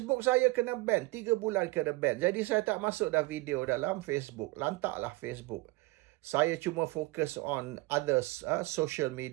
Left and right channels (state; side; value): quieter; left; 21.5 dB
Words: saya kena ban. 3 bulan kena ban. Jadi saya tak masuk dah video dalam Facebook. Lantaklah Facebook. Saya cuma fokus on others social